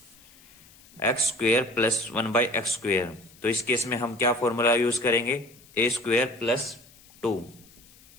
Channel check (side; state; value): left; noise; hiss, 25 dB below the sound